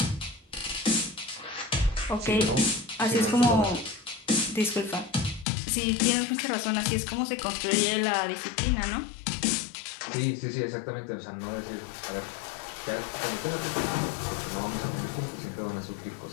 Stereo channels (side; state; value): right; drops out; at 5.5 s